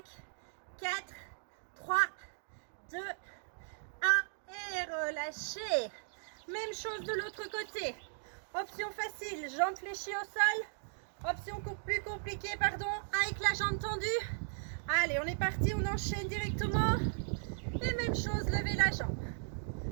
4, 3, 2, 1 et relâchez. Même chose de l'autre côté. Option facile, jambe fléchie au sol. Option plus compliquée, pardon, avec la jambe tendue. Allez, on est parti, on enchaîne directement. Et même chose, levez la jambe.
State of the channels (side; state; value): left; silent; digital silence